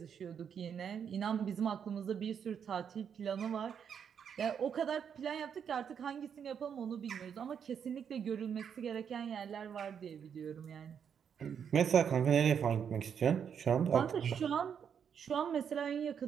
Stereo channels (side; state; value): left; quieter; 7.7 dB